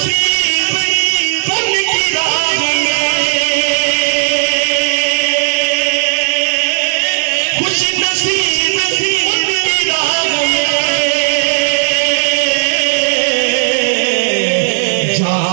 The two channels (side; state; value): left; silent; digital silence